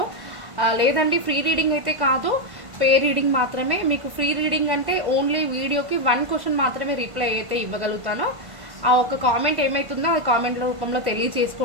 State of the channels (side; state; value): left; late; 1.5 ms